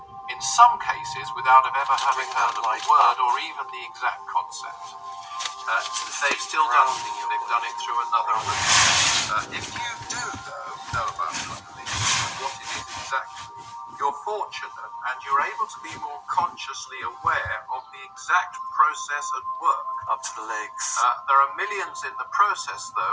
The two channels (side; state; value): both; identical; correlation 1.00